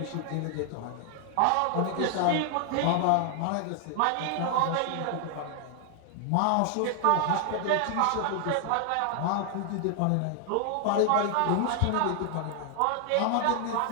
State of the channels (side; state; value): both; different; correlation 0.00